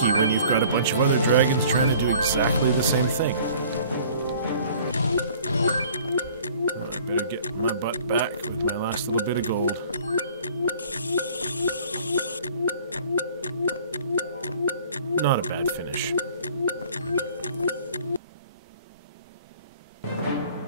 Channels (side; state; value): both; inverted; correlation -0.52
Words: when you've got a bunch of other dragons trying to do exactly the same thing. I better get my butt back with my last little bit of gold. Not a bad finish.